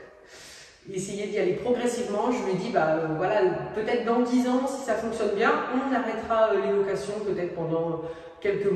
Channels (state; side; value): identical; both; correlation 1.00